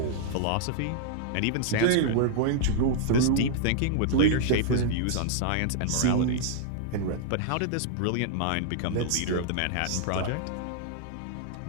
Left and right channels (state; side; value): different; both; correlation -0.01